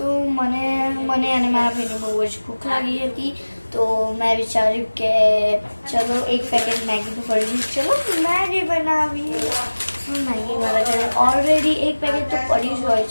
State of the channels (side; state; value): both; inverted; correlation -1.00